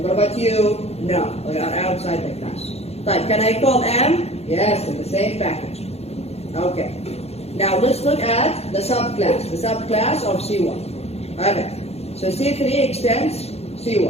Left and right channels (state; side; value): late; right; 0.30 ms